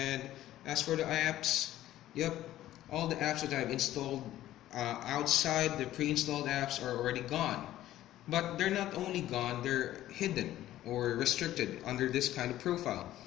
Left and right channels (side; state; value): right; quieter; 13.9 dB